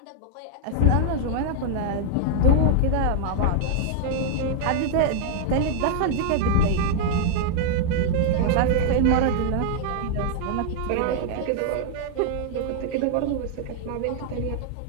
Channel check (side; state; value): both; different; correlation 0.00